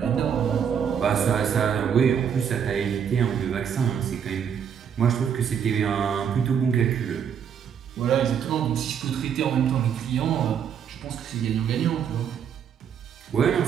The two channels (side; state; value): left; quieter; 7.9 dB